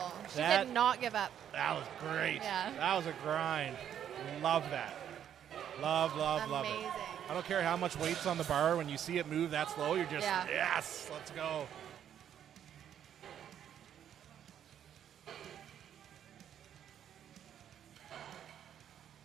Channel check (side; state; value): left; quieter; 9.7 dB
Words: She did not give up. That was great. Yeah. That was a grind. Love that. Love, love, love it. Amazing. I don't care how much weight's on the bar. When you see it move that slow, you're just, Yeah. yes, let's go.